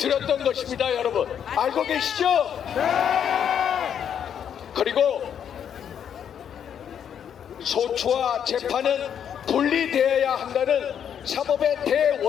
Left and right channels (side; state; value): right; quieter; 8.6 dB